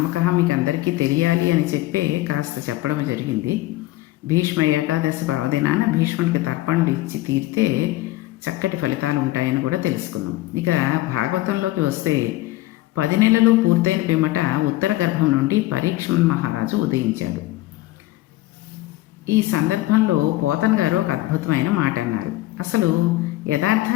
మీకు అందరికీ తెలియాలి అని చెప్పే కాస్త చెప్పడం జరిగింది. భీష్మ ఏకాదశి పర్వదినాన భీష్ముడికి తర్పణలు ఇచ్చి తీరితే చక్కటి ఫలితాలు ఉంటాయని కూడా తెలుసుకున్నాం. ఇక భాగవతంలోకి వస్తే 10 నెలలు పూర్తయిన పిమ్మట ఉత్తర గర్భం నుండి పరీక్షణ్ మహారాజు ఉదయించాడు. ఈ సందర్భంలో పోతన గారు ఒక అద్భుతమైన మాట అన్నారు. అసలు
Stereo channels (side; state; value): right; quieter; 17.2 dB